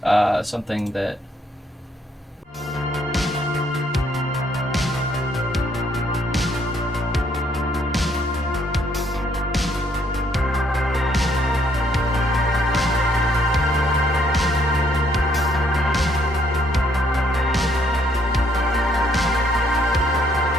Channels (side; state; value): both; normal; correlation 0.68